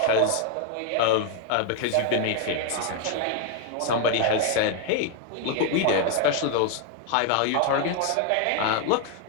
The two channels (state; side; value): different; both; correlation 0.00